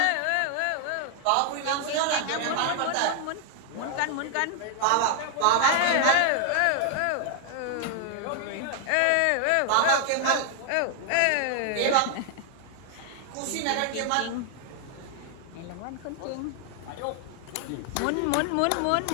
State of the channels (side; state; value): both; different; correlation 0.00